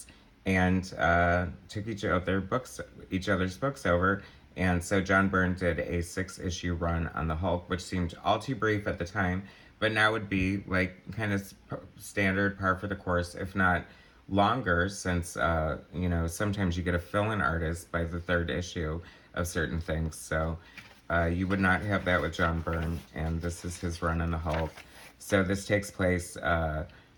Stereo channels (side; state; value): both; identical; correlation 1.00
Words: and took each other's books over. And so John Byrne did a 6-issue run on the Hulk, which seemed all too brief at the time, but now would be like kind of standard, par for the course, if not longer, since sometimes you get a fill-in artist by the third issue of certain things. So you would not have that with John Byrne, and this is his run on the Hulk. So this takes place